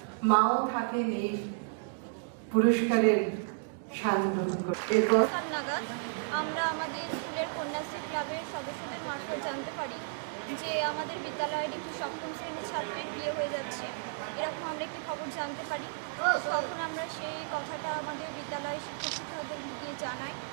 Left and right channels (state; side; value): silent; left; digital silence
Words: মাও থাকে নেই পুরস্কারের স্বাদ গ্রহণ করে। আমরা আমাদের স্কুলের কন্যাশ্রী ক্লাবের সদস্যদের মারফত জানতে পারি যে আমাদের বিদ্যালয়ের একটি সপ্তম শ্রেণীর ছাত্রীর বিয়ে হয়ে যাচ্ছে, এরকম আমরা একটি খবর জানতে পারি। তখন আমরা সেই কথাটা আমাদের বিদ্যালয়ের শিক্ষক শিক্ষকদের গিয়ে জানাই